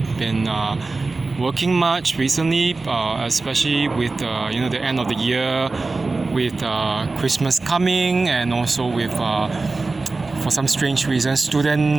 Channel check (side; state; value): left; quieter; 3.6 dB